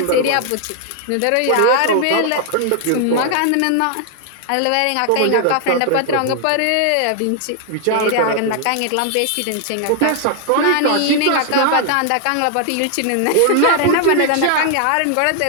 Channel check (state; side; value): different; both; correlation 0.00